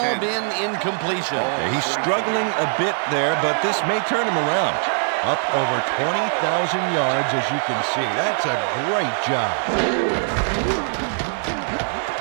been incompletion. He's struggling a bit there, but this may turn him around. Up over 20,000 yards, as you can see. That's a great job.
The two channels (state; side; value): silent; left; digital silence